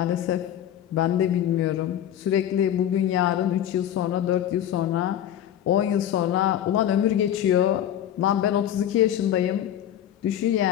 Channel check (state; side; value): quieter; right; 10.9 dB